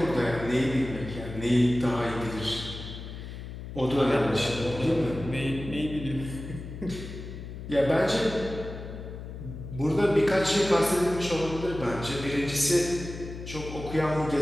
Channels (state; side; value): noise; left; hum, 10 dB below the sound